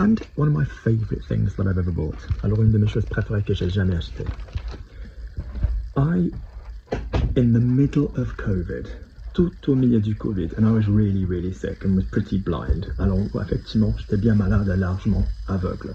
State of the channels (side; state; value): both; identical; correlation 1.00